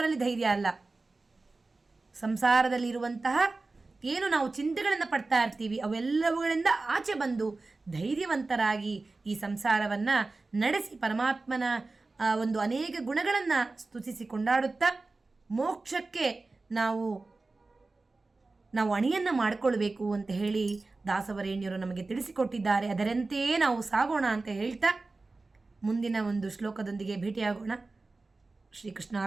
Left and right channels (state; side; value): quieter; left; 3.5 dB